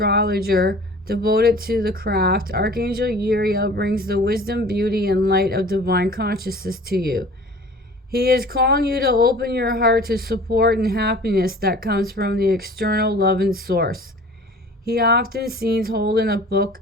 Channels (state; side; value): normal; both; correlation 0.45